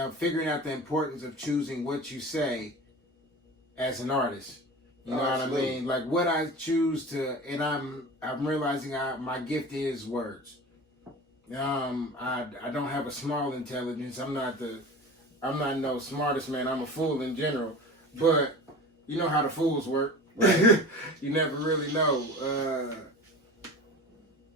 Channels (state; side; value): normal; both; correlation 0.35